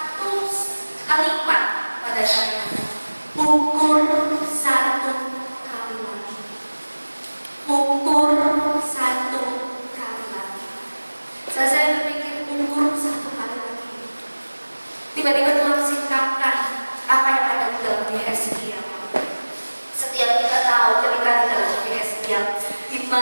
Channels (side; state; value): both; inverted; correlation -1.00